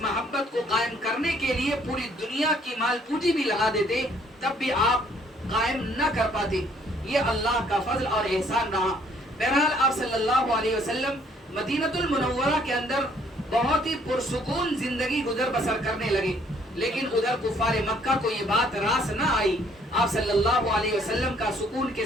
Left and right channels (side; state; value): both; normal; correlation 0.63